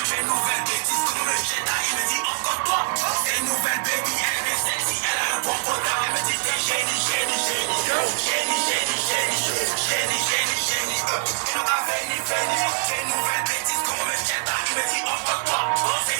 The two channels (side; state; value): left; silent; digital silence